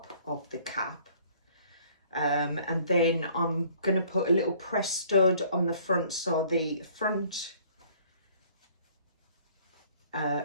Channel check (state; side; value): inverted; both; correlation -0.57